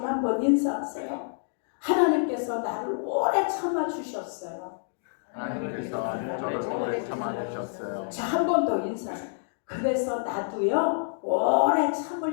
한번 인사하세요. 하나님께서 나를 오래 참아주셨어요. 하나님께서 저를 오래 참아주셨어요. 자, 한 번 더 인사하세요. 그래서 나도요 오래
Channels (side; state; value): right; silent; digital silence